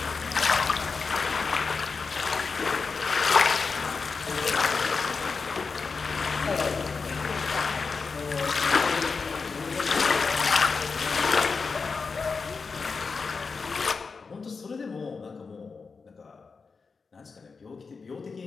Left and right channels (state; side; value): quieter; right; 4.8 dB